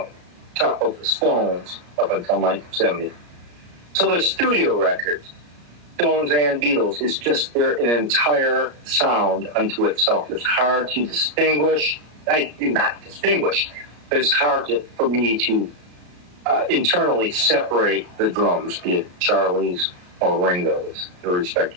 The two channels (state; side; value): late; left; 34 ms